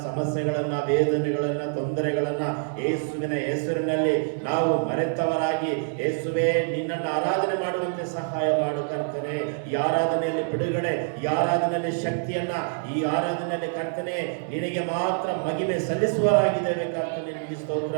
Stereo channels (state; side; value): silent; left; digital silence